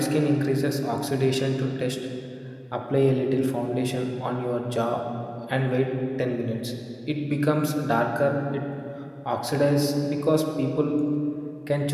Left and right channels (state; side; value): identical; both; correlation 1.00